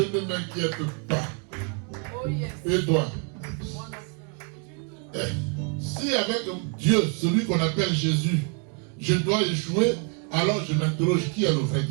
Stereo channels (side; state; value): left; quieter; 38.0 dB